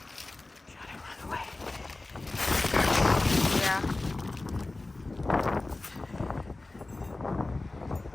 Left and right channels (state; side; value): quieter; right; 3.1 dB